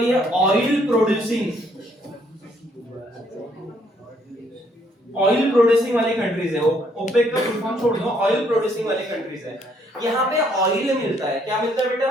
ये ऑयल प्रोड्यूसिंग वाली कंट्रीज है। ओपेक का फुल फॉर्म छोड़ दो, ऑयल प्रोड्यूसिंग वाली कंट्रीज है। यहाँ पे ऑयल मिलता है, क्या मिलता है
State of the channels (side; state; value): both; normal; correlation 0.68